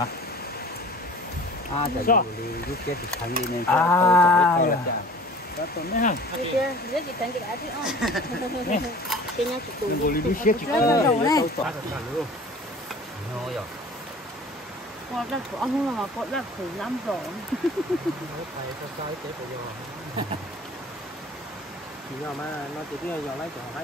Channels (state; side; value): normal; both; correlation 0.45